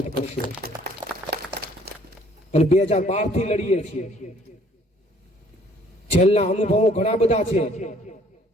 કરશો. અને 2012 થી લડીએ છીએ. જેલના અનુભવો ઘણા બધા છે,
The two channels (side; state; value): both; normal; correlation 0.59